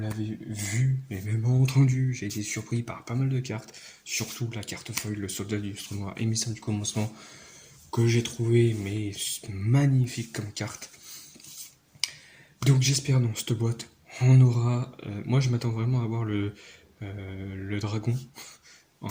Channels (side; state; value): both; identical; correlation 1.00